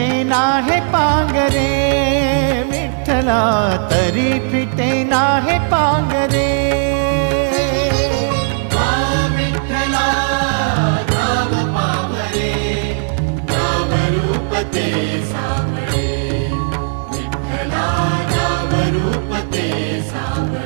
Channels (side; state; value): left; silent; 57 dB below the other